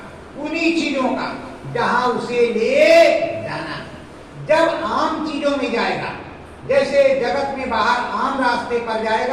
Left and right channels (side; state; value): both; identical; correlation 1.00